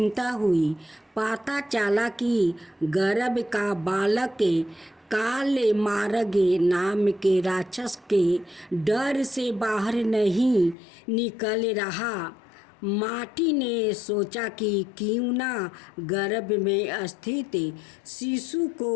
हुई। पता चला कि गर्भ का बालक काले मार्ग नाम के राक्षस के डर से बाहर नहीं निकल रहा। माटी ने सोचा कि क्यों ना गर्भ में स्थित शिशु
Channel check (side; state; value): right; drops out; at 10.8 s